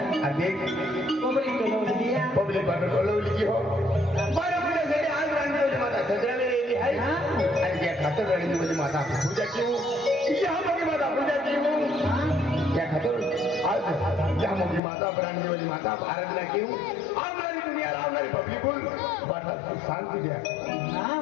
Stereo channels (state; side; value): drops out; right; at 14.8 s